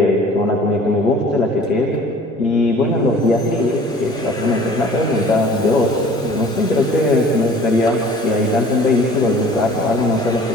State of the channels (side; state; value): both; normal; correlation 0.48